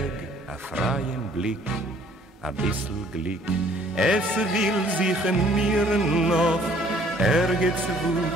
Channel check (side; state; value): both; normal; correlation 0.59